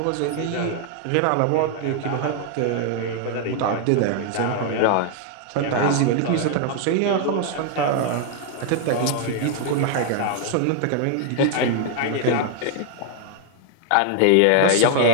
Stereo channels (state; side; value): different; both; correlation 0.00